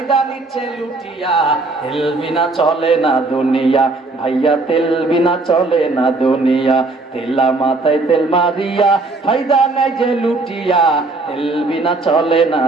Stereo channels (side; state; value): left; quieter; 3.4 dB